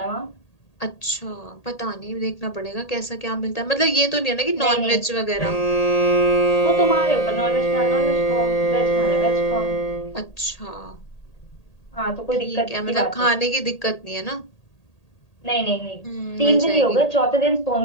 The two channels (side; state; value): right; late; 1.8 ms